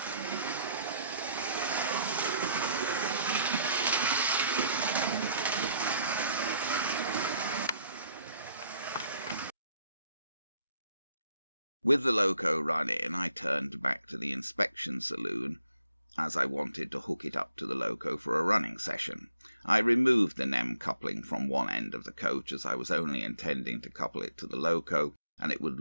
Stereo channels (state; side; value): inverted; both; correlation -0.70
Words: With the loco run in, I turned back to the inspection saloon, as I wanted to hook it up to the loco for a running session. I removed the NEM coupling from one end of the coach, as I was only intending to couple it to the loco, and it would